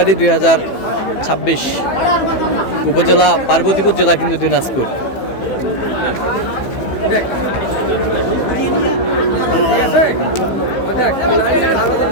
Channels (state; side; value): late; right; 15 ms